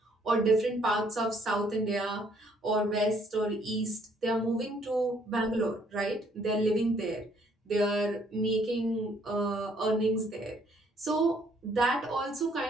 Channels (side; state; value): both; normal; correlation 0.66